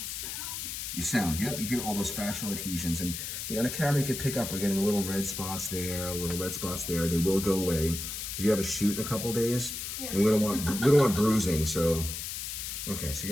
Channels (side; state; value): left; noise; hiss, 6 dB below the sound